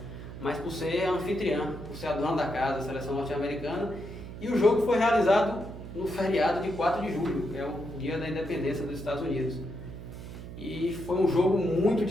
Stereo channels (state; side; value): noise; right; hum, 11 dB below the sound